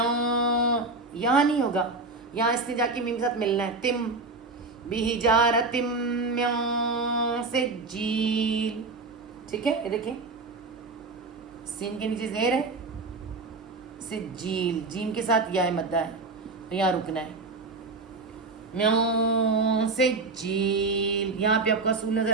یہاں نہیں ہوگا، یہاں اس نے جا کے میم کے ساتھ ملنا ہے. تم بحجارتم من سجیل، ٹھیک ہے. یہ دیکھیں سین کے نیچے زیر ہے، سجیل، جیم کے ساتھ یا مدہ ہے، تو یہاں رکنا ہے. من سجیل، یہاں پہ آپ کو اصول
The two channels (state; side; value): quieter; left; 3.6 dB